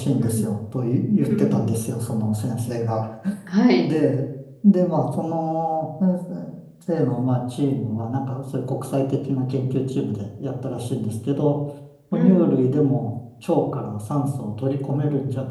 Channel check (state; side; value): identical; both; correlation 1.00